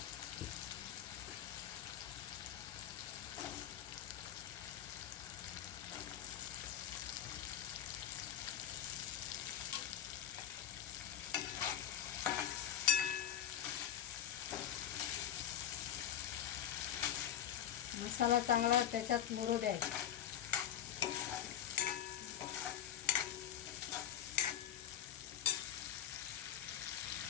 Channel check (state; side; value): quieter; right; 10.4 dB